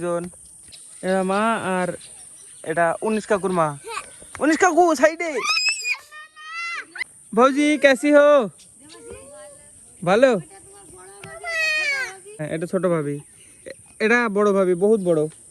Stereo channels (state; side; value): identical; both; correlation 1.00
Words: এটা মা আর এটা 19 কাকুর মা। 19 কাকু সাইডে। ভৌজি कैसी हो? ভালো। হ্যাঁ এটা ছোট ভাবি, এটা বড় ভাবি, বহুত বড়।